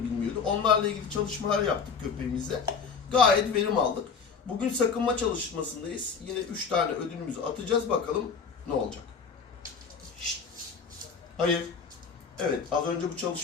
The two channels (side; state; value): right; quieter; 5.7 dB